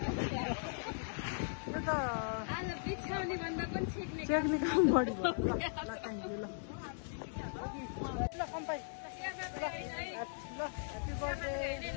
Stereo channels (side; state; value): right; silent; digital silence